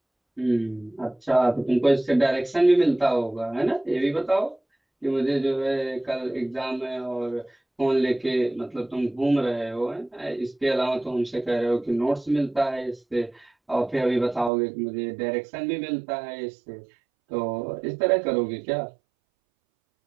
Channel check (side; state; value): left; drops out; at 14.5 s